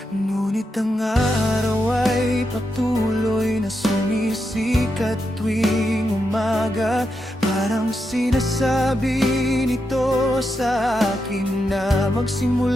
Ngunit ang araw ay patuloy na sumisikat tuwing umaga. Parang sinasabi nito sa akin na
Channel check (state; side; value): normal; both; correlation 0.85